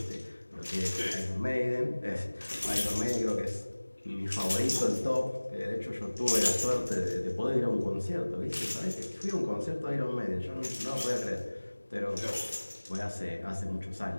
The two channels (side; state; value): both; inverted; correlation -1.00